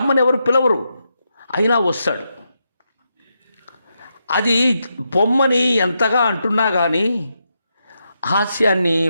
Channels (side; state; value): both; inverted; correlation -0.84